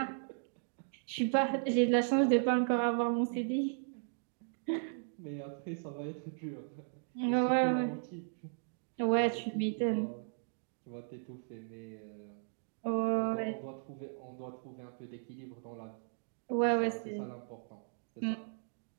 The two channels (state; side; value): silent; left; digital silence